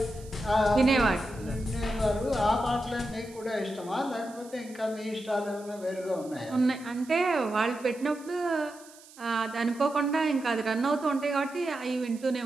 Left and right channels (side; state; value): right; noise; hiss, 22 dB below the sound